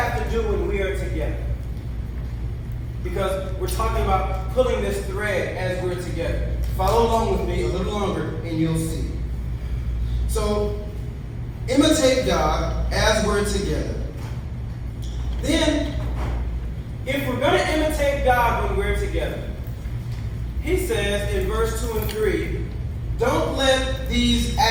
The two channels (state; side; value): identical; both; correlation 1.00